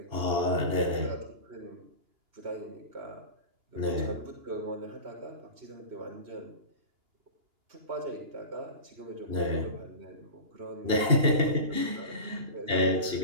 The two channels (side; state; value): left; late; 2.9 ms